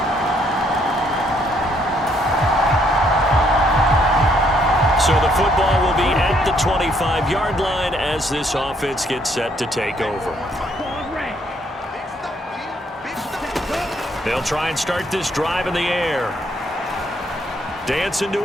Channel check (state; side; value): normal; both; correlation 0.69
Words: So the football will be at the 25-yard line as this offense gets set to take over. They'll try and start this drive in the air. Dancing to